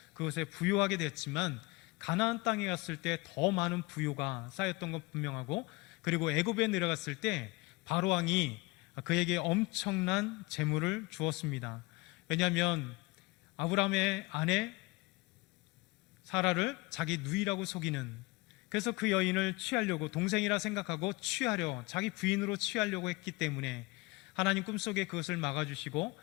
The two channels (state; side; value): quieter; right; 24.1 dB